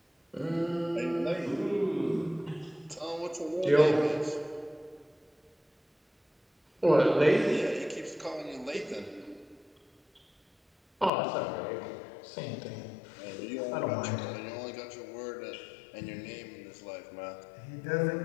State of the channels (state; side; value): drops out; right; at 11.1 s